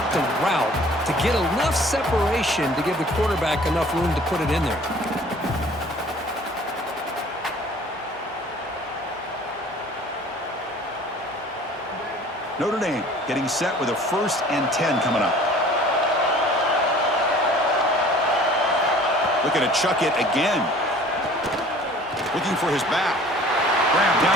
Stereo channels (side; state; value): both; normal; correlation 0.50